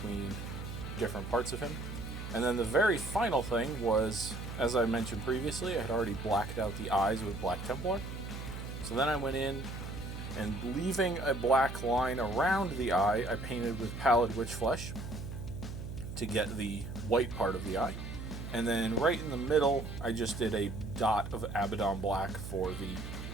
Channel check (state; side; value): noise; right; hum, 8 dB below the sound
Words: different parts of him. And then the very final thing was, as I mentioned previously, I had already blacked out the eyes with Black Templar. So then I went in, and leaving a black line around the eye, I painted with Pallid Witch flesh to get the white part of the eye. And then right in the middle, I just did a dot of Abaddon black for